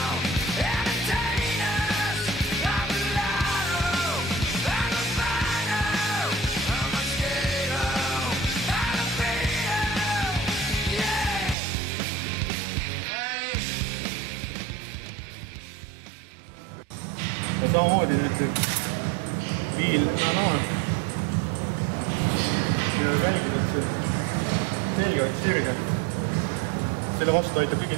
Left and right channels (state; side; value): drops out; left; at 11.6 s